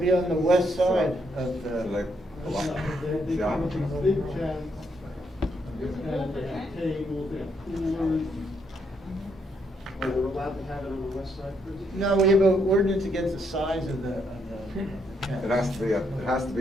on the west side of so the, like, They yeah. come with these big tents, and they have tables, they have coolers. Are we allowed to have it on the west side, Chris? no, we have an ordinance against the size of the It has to be, it has to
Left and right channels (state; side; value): normal; both; correlation 0.75